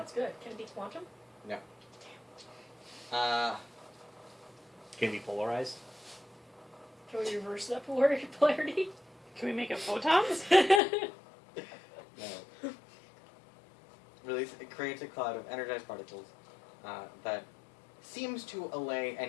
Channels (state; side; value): drops out; right; at 10.8 s